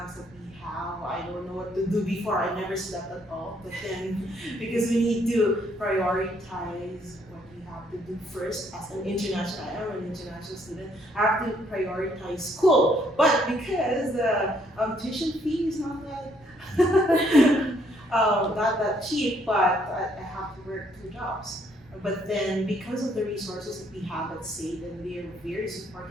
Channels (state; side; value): noise; right; rumble, 27 dB below the sound